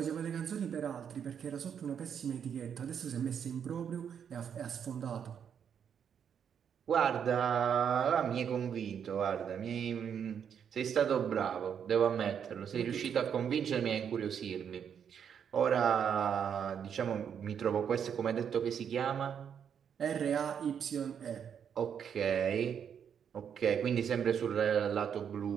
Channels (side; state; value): left; quieter; 7.9 dB